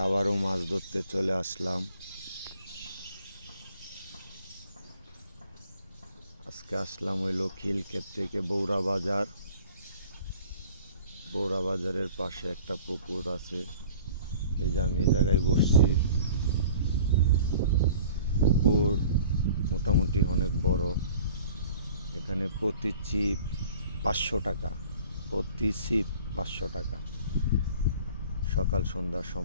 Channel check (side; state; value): both; inverted; correlation -0.48